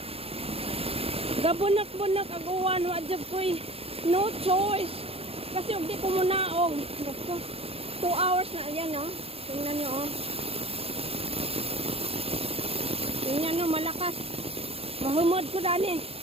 Gabunak-bunak ang uwan. Wadjab ko'y no choice. Kasi hindi ko munaog. 2 hours na. Ayan, oh. Tingnan nyo, oh. Tingnan nyo, malakas. Mahumod ko dani.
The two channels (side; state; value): left; late; 0.28 ms